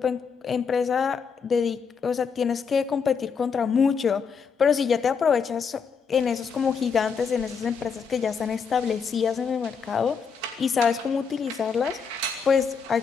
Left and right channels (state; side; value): quieter; right; 6.0 dB